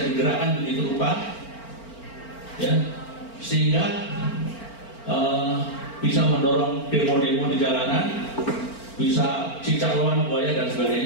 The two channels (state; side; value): late; right; 4.4 ms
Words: digerakkan begitu rupa, ya, sehingga bisa mendorong demo-demo di jalanan, bisa cicak lawan buaya dan